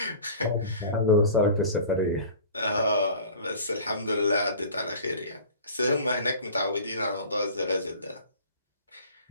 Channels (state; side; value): inverted; both; correlation -0.42